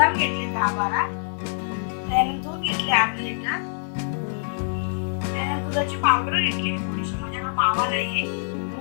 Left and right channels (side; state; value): right; silent; digital silence